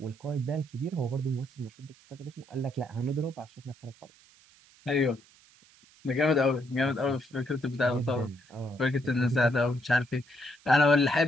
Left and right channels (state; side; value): noise; right; hiss, 28 dB below the sound